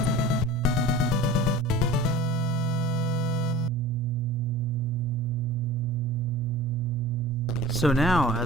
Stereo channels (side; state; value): both; normal; correlation 0.39